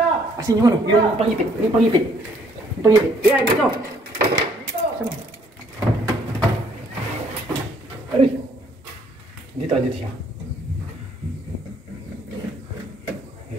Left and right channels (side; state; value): both; normal; correlation 0.65